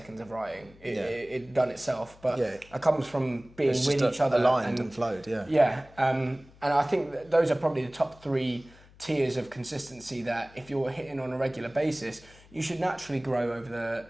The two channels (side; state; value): left; noise; hum, 25 dB below the sound